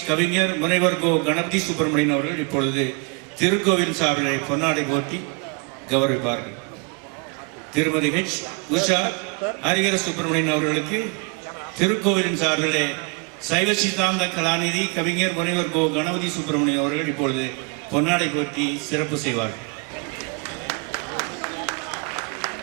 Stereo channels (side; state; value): left; quieter; 32.8 dB